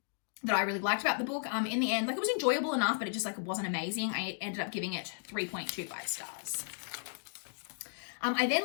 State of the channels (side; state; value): right; silent; digital silence